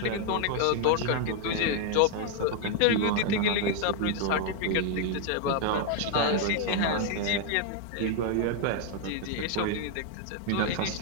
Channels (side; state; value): both; different; correlation 0.00